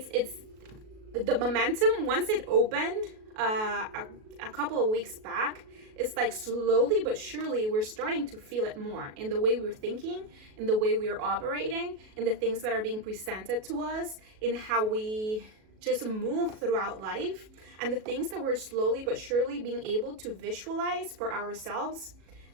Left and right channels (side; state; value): left; late; 37 ms